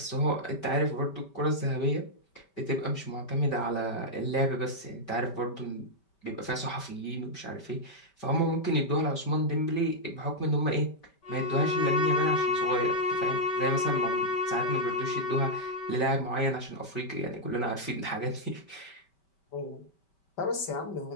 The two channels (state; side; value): late; right; 5.2 ms